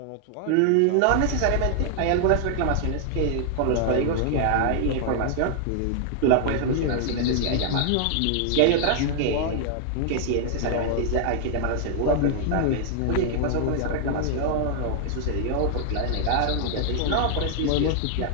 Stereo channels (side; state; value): both; different; correlation 0.00